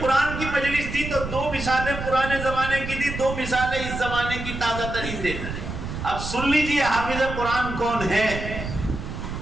کی مجلس تھی تو دو مثالیں پرانے زمانے کی تھی، دو مثالیں اس زمانے کی تازہ ترین دے رہے ہیں۔ اب سن لیجیے حافظ قرآن کون ہے۔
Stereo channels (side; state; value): right; noise; rumble, 7 dB below the sound